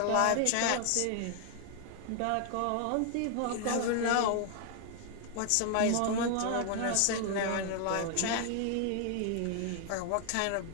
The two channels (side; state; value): both; different; correlation 0.00